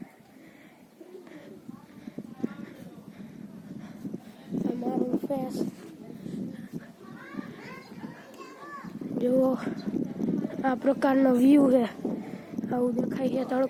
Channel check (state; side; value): identical; both; correlation 1.00